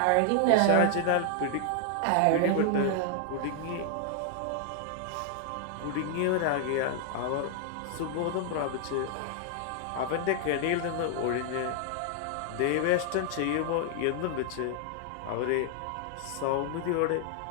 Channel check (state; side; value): different; both; correlation 0.00